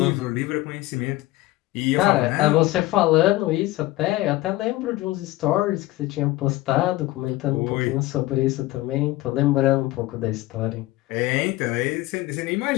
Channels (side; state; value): right; quieter; 18.0 dB